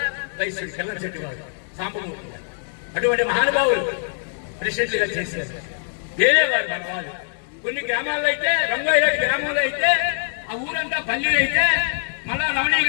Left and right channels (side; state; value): right; silent; digital silence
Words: వైశ్యుడు, కిల్లం చెట్టు వారు, సాంబమూర్తి. అటువంటి మహానుభావులు ప్రెసిడెంట్లుగా చేశారు. వేరే వారు మన వాళ్ళు. కొన్ని గ్రామాల్లో అయితే, రంగోయి గ్రామంలో అయితే, ఆ ఊరంతా పల్లెలు అయితే మళ్ళా రమణయ్య